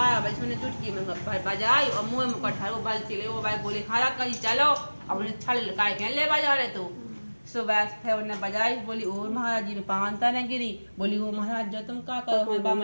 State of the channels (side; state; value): both; inverted; correlation -1.00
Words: बजे मैंने चुटकी में बजाई और मुँह में कठार वो बल चले वो भाई बोले हाँ रात का जी चलो अब उन्हें छल काय के ले बजा रहे तो। सुबह फिर उन्हें बजाई बोली ओ महाराज जी में पानता न गिरी। बोली ओ महाराज जो तुम का करो मैं